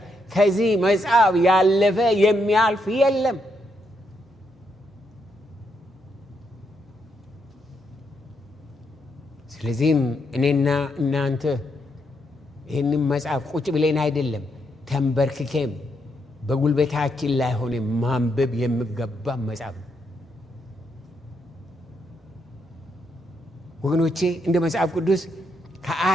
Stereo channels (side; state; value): both; normal; correlation 0.79